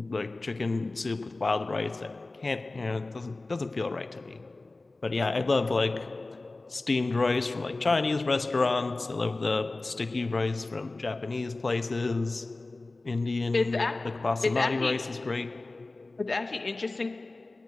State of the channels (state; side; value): quieter; right; 3.2 dB